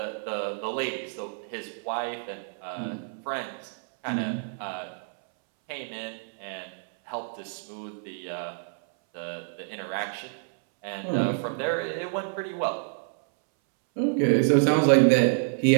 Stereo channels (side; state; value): left; silent; 59 dB below the other